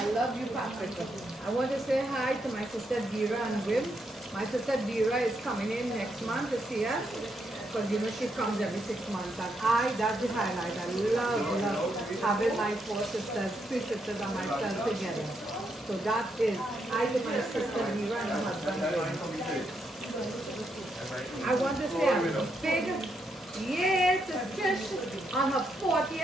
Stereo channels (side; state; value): both; normal; correlation 0.79